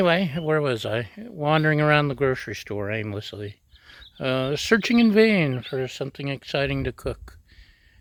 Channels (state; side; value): identical; both; correlation 1.00